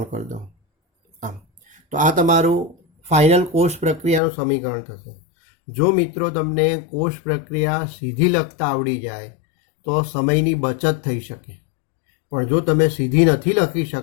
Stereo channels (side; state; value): right; drops out; at 4.2 s